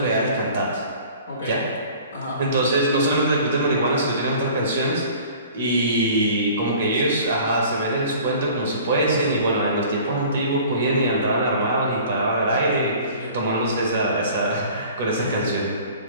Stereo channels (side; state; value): both; inverted; correlation -0.47